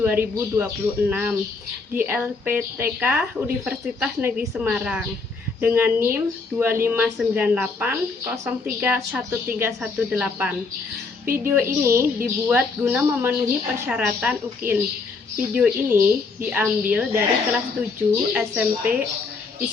di LPTK Universitas Negeri Semarang dengan NIM 2598031318. Video ini dibuat guna memenuhi persyaratan UKIN. Video ini diambil dari kelas 7 SMP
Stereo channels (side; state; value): right; quieter; 4.3 dB